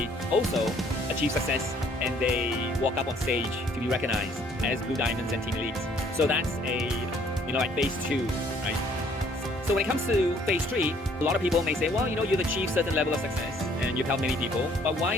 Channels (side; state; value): both; normal; correlation 0.61